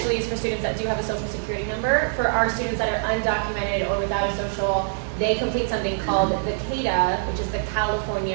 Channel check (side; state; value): left; silent; digital silence